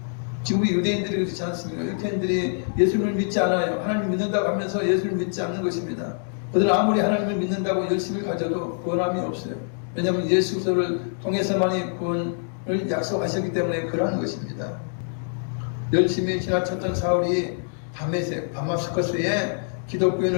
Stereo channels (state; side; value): silent; right; digital silence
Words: 지금 유대인들이 그렇지 않습니까? 유대인들이 예수님을 믿지 않아요. 하나님 믿는다고 하면서 예수님을 믿지 않는 것입니다. 그들은 아무리 하나님을 믿는다고 열심을 가져도 구원함이 없어요. 왜냐하면 예수를 통해서만이 구원을 약속하셨기 때문에 그러한 것입니다. 열심히 지나쳤던 사울이 다마스커스에